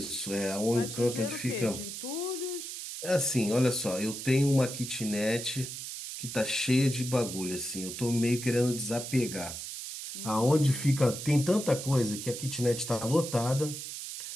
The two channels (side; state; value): right; noise; hiss, 8 dB below the sound